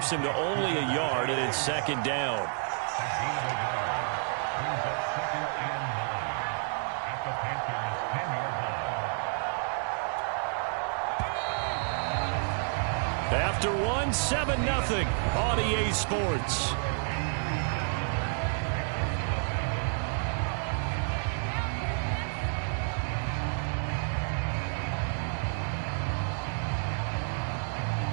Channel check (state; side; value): silent; left; 58 dB below the other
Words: him to only a yard, and it's 2nd down. After one, 7-0 on EA Sports.